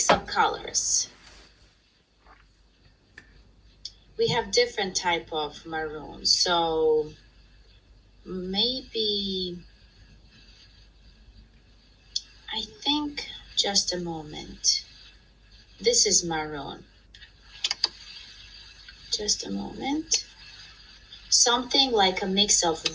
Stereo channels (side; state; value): both; identical; correlation 1.00